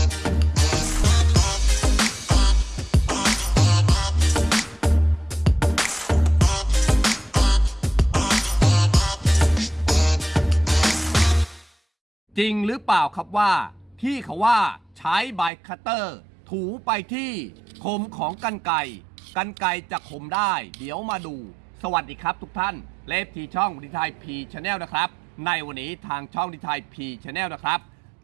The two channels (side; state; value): left; drops out; at 15.5 s